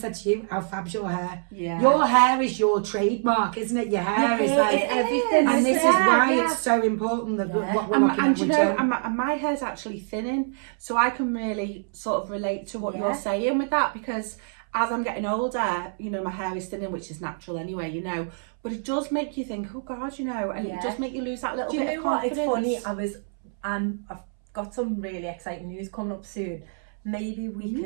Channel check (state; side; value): silent; left; 61 dB below the other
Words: to you? How fab's your hair? Your hair is your trademark, isn't it? Your hair is like everything, and this is why it's so important that what we're looking at. And you know, and my hair's actually thinning, so I can really sort of relate to what you're saying with that, because as I'm getting older, you know, my hair is thinning, which is natural anyway, you know, but it does make you think, oh God, you know, and it does make you lose that little bit of confidence. Do you know what? It's funny, I've got some really exciting news coming up soon. Maybe we